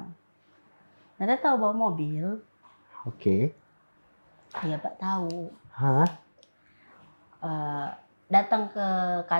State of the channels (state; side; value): inverted; both; correlation -1.00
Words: Nada tahu bawa mobil? Oke. Iya Pak tahu. Hah? Datang ke